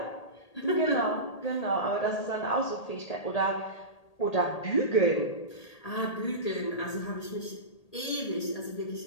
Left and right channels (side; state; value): right; late; 1.8 ms